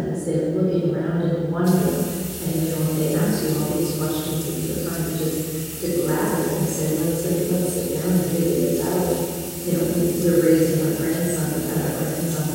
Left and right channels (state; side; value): identical; both; correlation 1.00